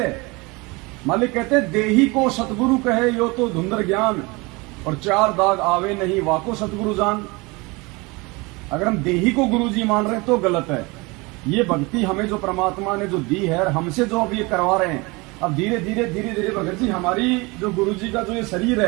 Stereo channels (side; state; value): left; quieter; 25.6 dB